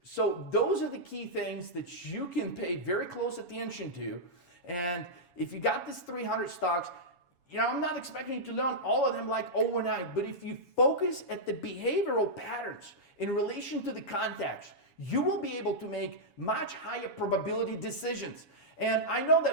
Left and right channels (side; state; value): right; late; 7.1 ms